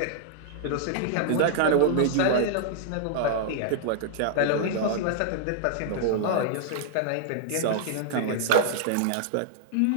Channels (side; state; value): both; different; correlation -0.01